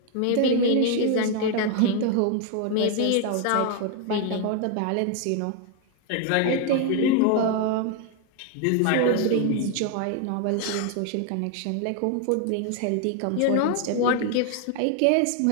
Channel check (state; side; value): different; both; correlation 0.01